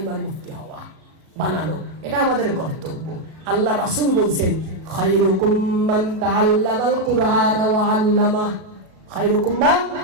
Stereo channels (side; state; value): left; late; 37 ms